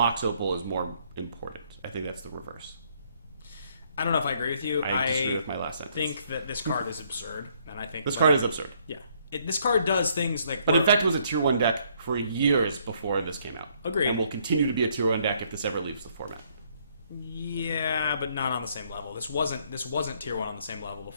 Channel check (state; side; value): inverted; both; correlation -0.67